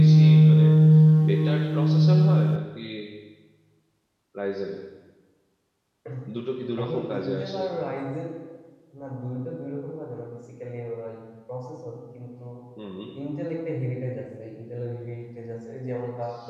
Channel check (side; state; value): both; identical; correlation 1.00